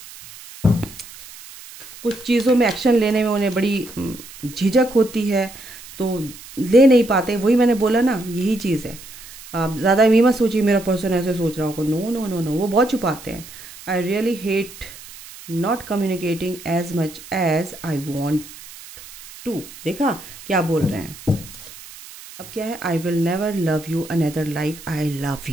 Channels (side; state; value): right; noise; hiss, 17 dB below the sound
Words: कुछ चीज़ों में एक्शन लेने में उन्हें बड़ी झिझक होती है, तो ले नहीं पाते। वही मैंने बोला ना, यही चीज़ है। आप ज़्यादा ये मत सोचिए मेरा पर्सन ऐसे सोच रहा होगा, नो नो नो नो, वो बहुत छुपाते हैं। I really hate not communicating as much as I want to. देखा क्या बोल रहे हैं, अब क्या है, I will never love you another like I love